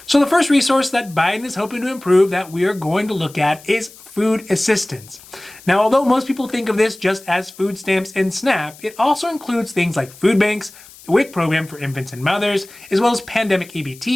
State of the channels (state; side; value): noise; left; hiss, 21 dB below the sound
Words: So the first resource that Biden is hoping to improve that we are going to look at is food assistance. Now, although most people think of this just as food stamps and SNAP, it also includes things like food banks, the WIC program for infants and mothers, as well as pandemic